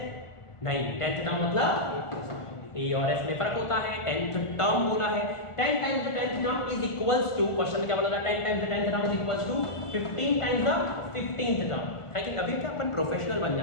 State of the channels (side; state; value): right; late; 1.4 ms